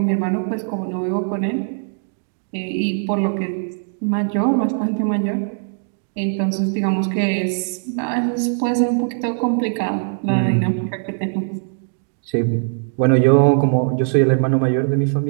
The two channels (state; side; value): silent; left; 65 dB below the other